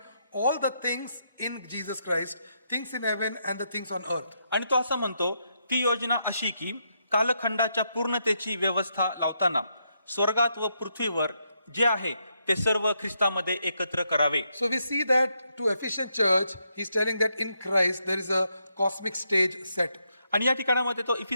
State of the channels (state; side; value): inverted; both; correlation -0.79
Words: all the things in Jesus Christ, things in heaven and the things on earth. आणि तो असं म्हणतो ती योजना अशी की कालखंडाच्या पूर्णतेची व्यवस्था लावताना स्वर्गात व पृथ्वीवर जे आहे ते सर्व ख्रिस्तामध्ये एकत्र करावे. So we see that to Ephesian church, he's telling that in Christ there is a cosmic stage set. आणि या ठिकाणामध्ये तो